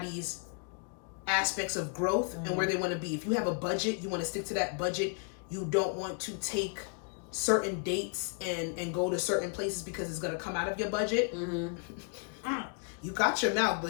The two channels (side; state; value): right; quieter; 39.2 dB